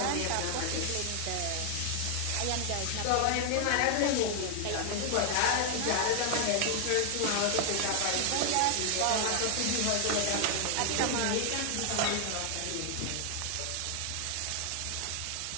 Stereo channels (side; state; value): both; different; correlation 0.00